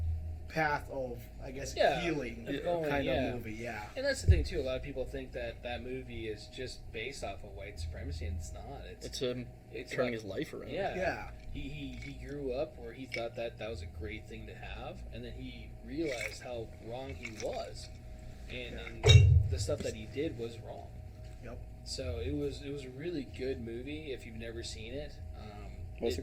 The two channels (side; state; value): both; identical; correlation 1.00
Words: path of, I guess, Yeah, healing going, kind yeah. of movie. Yeah. And that's the thing too. A lot of people think that movie is just based off of white supremacy, and it's not. It's It's turning about- his life around. Yeah. Yeah. He grew up where he thought that was a great thing to have, and then he realized how wrong he was, and the stuff that he did was wrong. Yep. So it was a really good movie if you've never seen it. What's